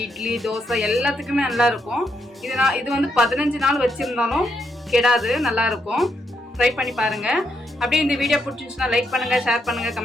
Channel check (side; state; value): both; normal; correlation 0.79